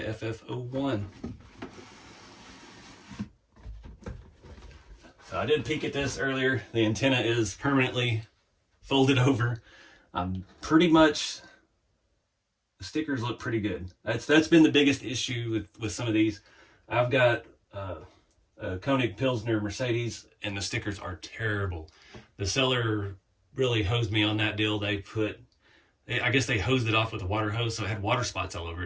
FF01. So I did peek at this earlier. The antenna is permanently folded over. Pretty much, the stickers look pretty good. That's been the biggest issue with some of these. I've got a Koenig Pilsner Mercedes, and the stickers are terrible. The seller really hosed me on that deal. I guess they hosed it off with a water hose, so it had water spots all over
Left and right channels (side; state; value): both; identical; correlation 1.00